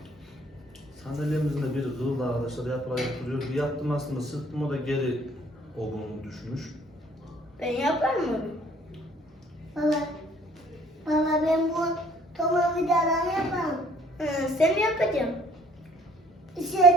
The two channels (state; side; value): normal; both; correlation 0.58